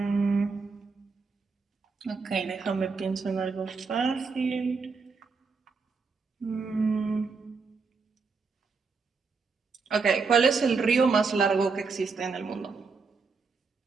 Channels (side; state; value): left; quieter; 4.7 dB